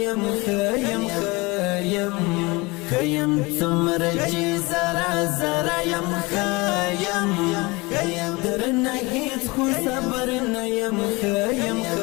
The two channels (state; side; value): quieter; right; 24.5 dB